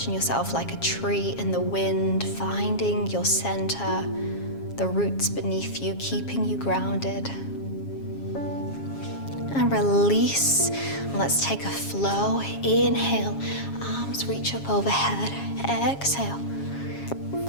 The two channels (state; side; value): late; right; 7.3 ms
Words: yourself like a tree in the wind, finding your center, the roots beneath you, keeping you grounded. And release. Let's take a flow. Inhale, arms reach up overhead. Exhale,